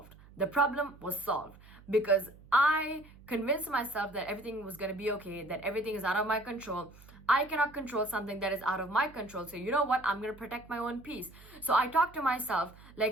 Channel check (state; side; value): noise; right; hum, 22 dB below the sound